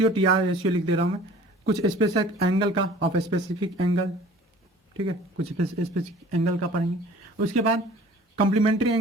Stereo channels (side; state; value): both; normal; correlation 0.48